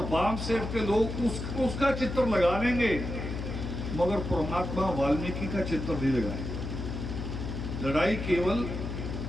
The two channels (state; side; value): noise; left; hum, 5 dB below the sound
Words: बाम सेव के लोग उसका चित्र लगा लेंगे, मगर परमात्मा वाल्मीकि का चित्र नहीं लगाए। लड़ाई केवल